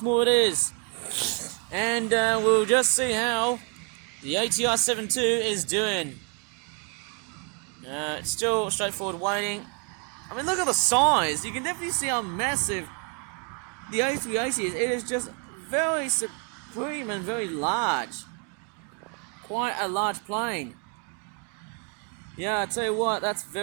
it is. And we'll just see how the ATR 72 is doing. It's still straightforward waiting. I mean, look at the size. You can definitely see how massive the A380 is. It is just very supreme and very large. Quite a large plane. Yeah, I tell you what, that's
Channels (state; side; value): quieter; left; 37.5 dB